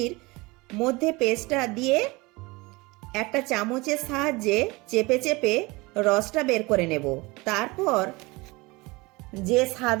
মধ্যে পেস্টটা দিয়ে একটা চামচের সাহায্যে চেপে চেপে রসটা বের করে নেব। তারপর যে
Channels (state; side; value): quieter; left; 23.8 dB